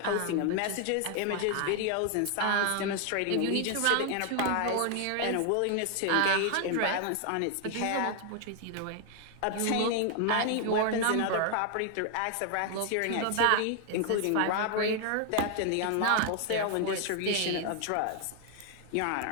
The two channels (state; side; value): different; both; correlation 0.00